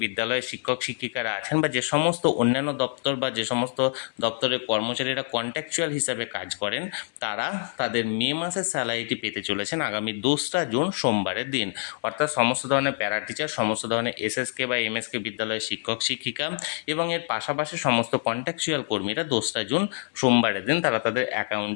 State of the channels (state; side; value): silent; right; 61 dB below the other